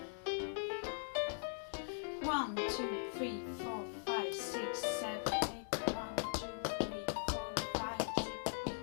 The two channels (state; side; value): silent; right; digital silence